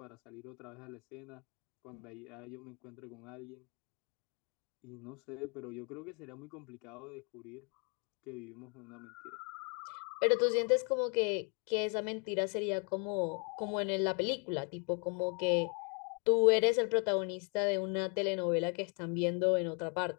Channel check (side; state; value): right; quieter; 37.4 dB